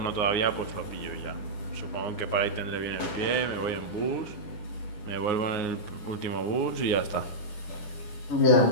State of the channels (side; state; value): right; late; 10 ms